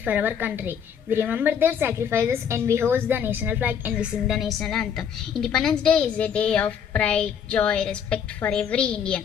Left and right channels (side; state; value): right; quieter; 7.9 dB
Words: for our country. We remember their sacrifices and we hoist the national flag and we sing the national anthem. Independence Day is a day of pride, joy, respect for every